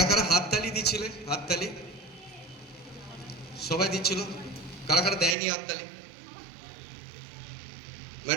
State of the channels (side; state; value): left; drops out; at 5.4 s